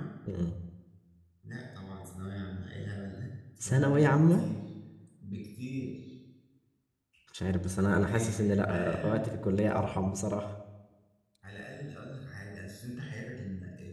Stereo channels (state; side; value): identical; both; correlation 1.00